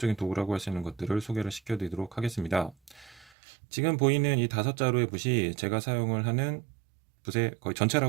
도구라고 할 수 있는 것들을 소개를 시켜드리도록 하겠습니다. 지금 보이는 이 5자루의 붓이 제가 사용을 하는 붓의 거의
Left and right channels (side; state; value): left; drops out; at 3.3 s